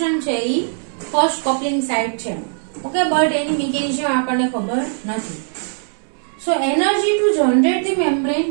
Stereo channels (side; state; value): left; silent; digital silence